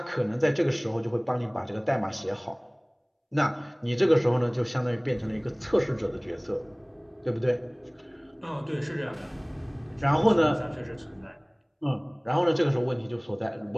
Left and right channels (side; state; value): both; identical; correlation 1.00